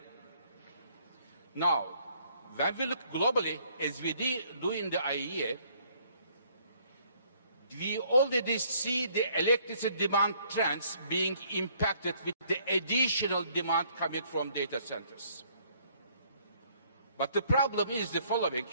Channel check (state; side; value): inverted; both; correlation -0.64